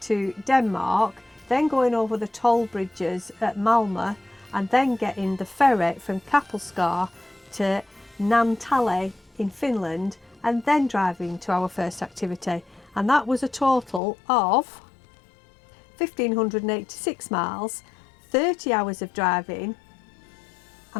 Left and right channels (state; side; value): drops out; right; at 14.0 s